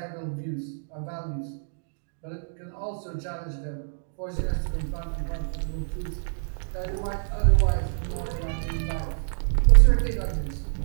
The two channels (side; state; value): left; silent; digital silence